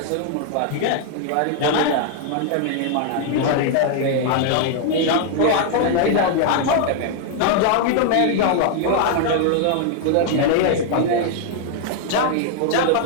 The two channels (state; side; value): different; both; correlation 0.00